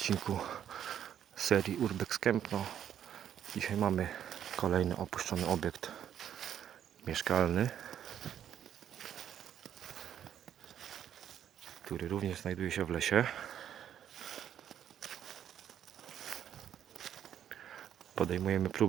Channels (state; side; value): quieter; left; 9.8 dB